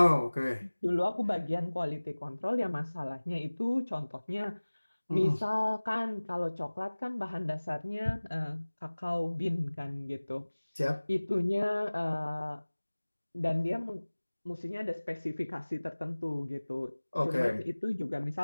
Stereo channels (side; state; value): both; inverted; correlation -1.00